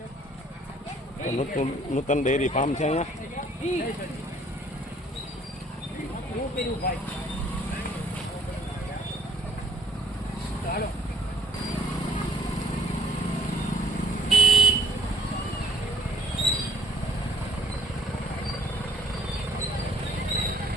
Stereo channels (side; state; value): both; normal; correlation 0.59